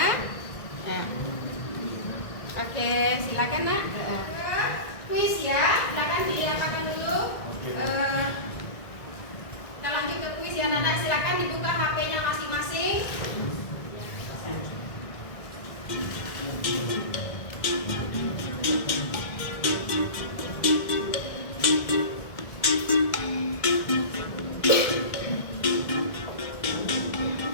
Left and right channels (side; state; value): right; late; 1.9 ms